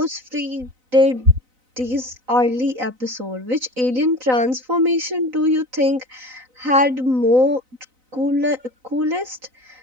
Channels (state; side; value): late; left; 4.0 ms